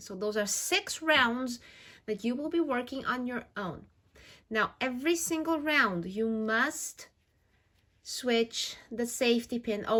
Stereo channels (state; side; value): identical; both; correlation 1.00